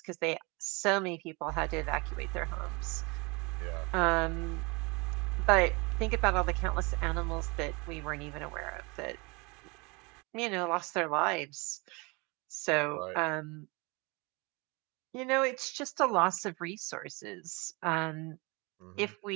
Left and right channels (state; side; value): quieter; left; 27.9 dB